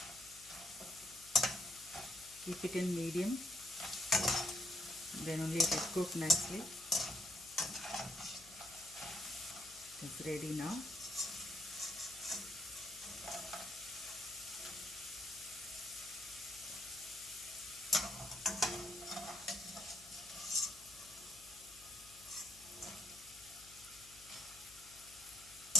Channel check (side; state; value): left; noise; hum, 22 dB below the sound